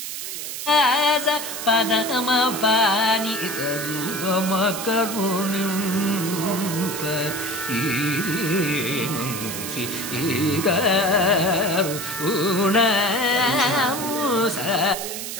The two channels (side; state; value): right; noise; hiss, 6 dB below the sound